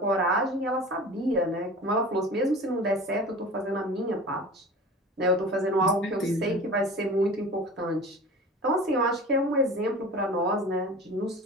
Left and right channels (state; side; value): normal; both; correlation 0.37